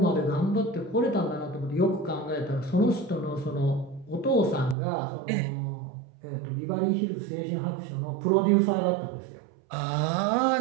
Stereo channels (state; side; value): drops out; left; at 4.8 s